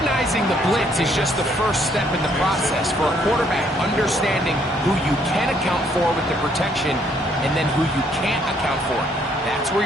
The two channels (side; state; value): both; normal; correlation 0.67